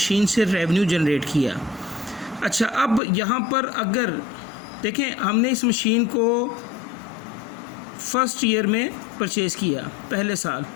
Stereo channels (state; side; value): drops out; right; at 3.0 s